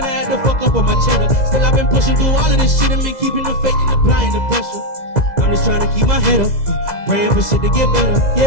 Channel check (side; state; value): right; late; 2.0 ms